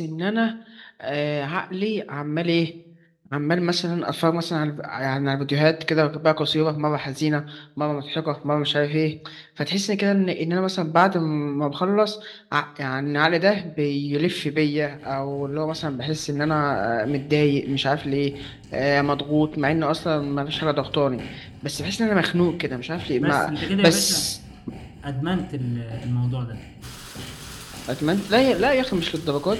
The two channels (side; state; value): both; identical; correlation 1.00